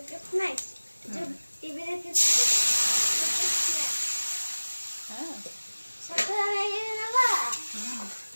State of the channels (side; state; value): both; inverted; correlation -1.00